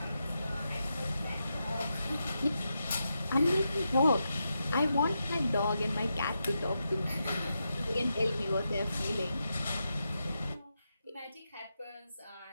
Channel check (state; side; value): inverted; both; correlation -0.86